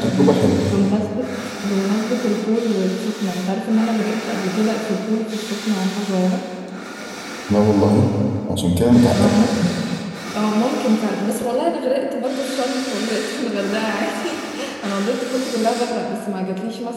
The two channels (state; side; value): identical; both; correlation 1.00